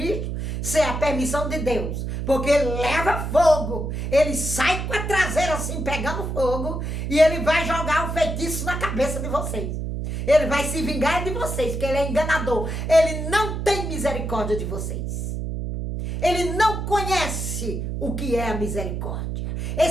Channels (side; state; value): right; noise; hum, 3 dB below the sound